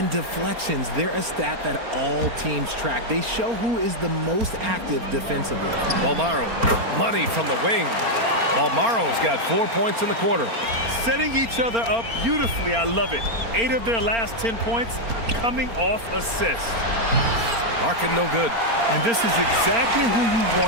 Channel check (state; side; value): late; left; 4.3 ms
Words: deflections, they're a stat that all teams track. They show who is the most active defensively. Almaro, money from the wing. Almaro's got 4 points in the quarter. Setting each other up beautifully, I love it. 8 of their last 10 points coming off assists. Larkin no good. And this is exactly who you